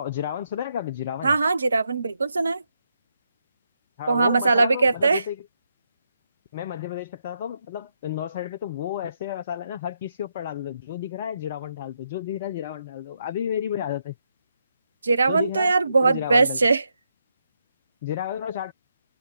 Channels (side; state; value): both; inverted; correlation -0.80